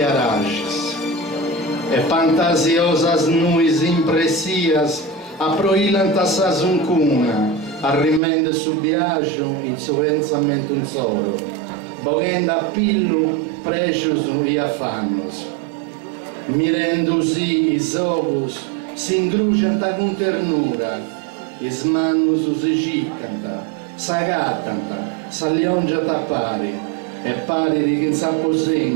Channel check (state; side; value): drops out; left; at 8.2 s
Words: E fantasiosas nuis impressias aproilant a sa zuncuna, arrimende su biagio in su pensamento un solo, boghenda a pillu precios e affannos. Mirendosi is ocus si ingrugianta con ternura, is mannus si ciccanta, s'agattanta, s'alliongiata pari, e pari di chi